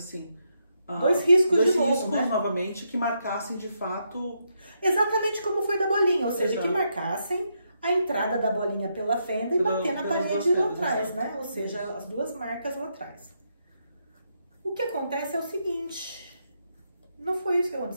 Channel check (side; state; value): both; inverted; correlation -0.80